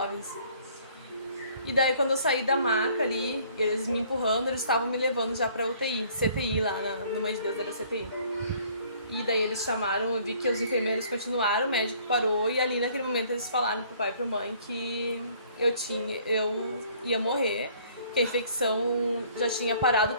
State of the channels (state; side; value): inverted; both; correlation -0.58